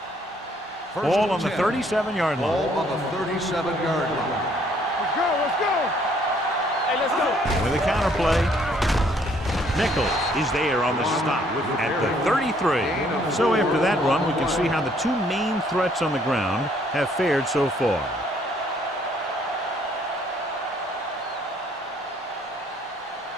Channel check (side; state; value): both; normal; correlation 0.64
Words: Ball on the 37-yard Ball line. on the 37-yard line. Let's go, let's go. Hey, let's go. With a counterplay. Nichols is there on the stop at the 33. So after that run, we can see how the 2 main threats on the ground have fared so far.